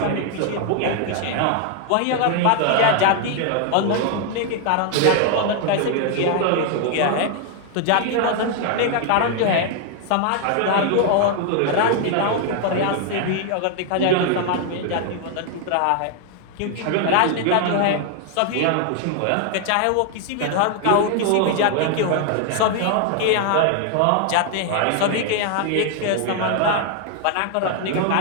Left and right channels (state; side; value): different; both; correlation 0.00